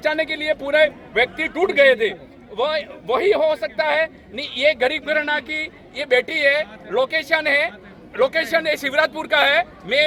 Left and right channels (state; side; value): identical; both; correlation 1.00